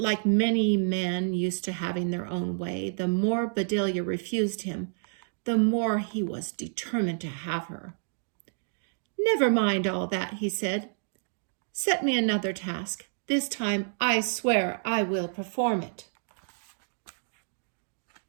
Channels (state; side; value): silent; left; digital silence